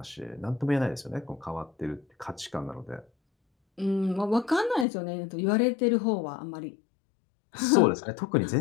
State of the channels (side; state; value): right; drops out; at 4.9 s